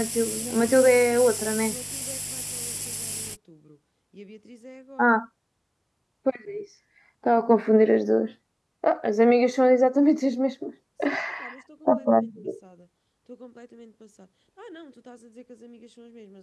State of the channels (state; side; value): identical; both; correlation 1.00